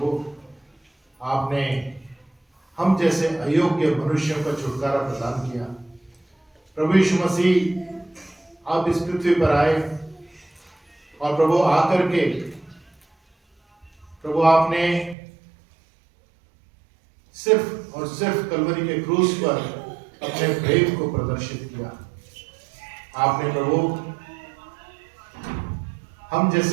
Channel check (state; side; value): drops out; left; at 15.2 s